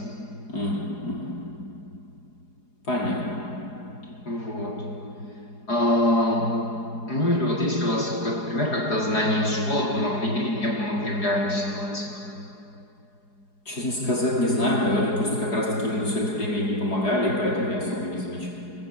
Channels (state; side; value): late; right; 4.8 ms